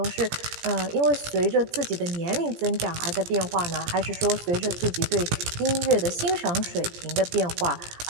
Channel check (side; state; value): left; late; 17 ms